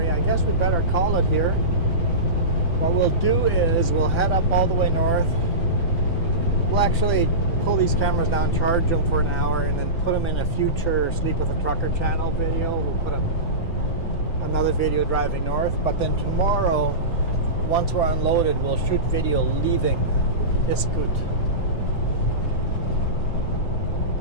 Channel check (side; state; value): right; late; 6.0 ms